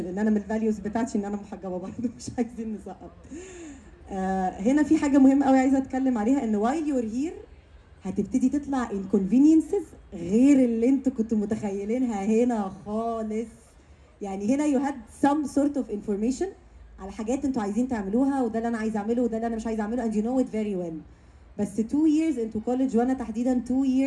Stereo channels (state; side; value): identical; both; correlation 1.00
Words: ان انا من الفاليوز بتاعتي ان انا محجبه برضه، مش عايزين نسقط. هنا في حاجه مهمه قوي عايزه اتكلم عليها، ان while you're here هتبتدي تطلع inconveniences غير اللي انتوا كنتوا متخيلينها هنا خالص. يعني هنا you had some sort of information على حاجات انتوا عايزين تعملوها، وده اللي انا عايز اعمله وده اللي انا مش عايز اعمله and you know it very well. بس 2 years into college، وانا تحديدا 2